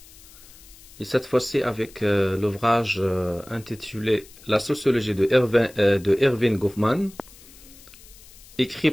et cette fois-ci avec l'ouvrage intitulé La sociologie de Erving Goffman, écrit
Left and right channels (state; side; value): noise; left; hiss, 22 dB below the sound